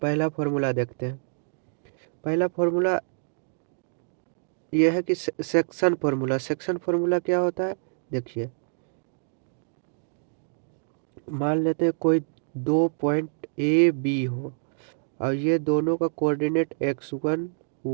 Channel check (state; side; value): silent; left; digital silence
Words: पहला फार्मूला देखते हैं। पहला फार्मूला यह है कि सेक्शन फार्मूला। सेक्शन फार्मूला क्या होता है, देखिए। मान लेते हैं कोई दो पॉइंट ए बी हो और ये दोनों का कोऑर्डिनेट x1